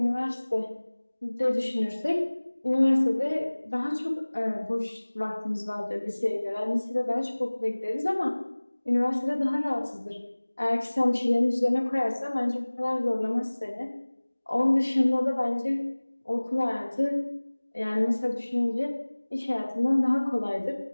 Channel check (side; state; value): both; inverted; correlation -1.00